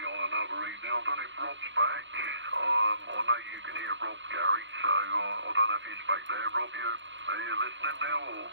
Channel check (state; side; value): late; left; 0.54 ms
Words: on another evening. I don't know if Rob's back. I know you can hear Rob, Gary, so I don't know if he's back there. Rob, are you listening now, or...?